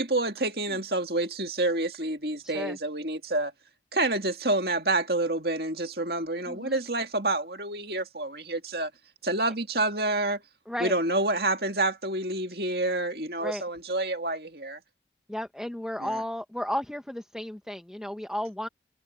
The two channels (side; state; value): both; normal; correlation -0.05